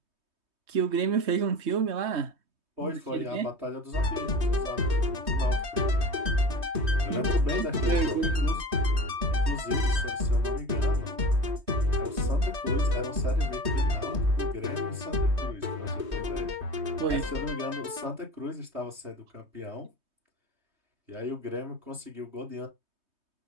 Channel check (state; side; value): late; left; 3.2 ms